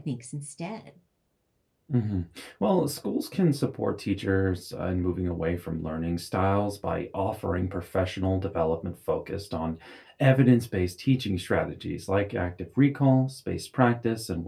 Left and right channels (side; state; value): both; identical; correlation 1.00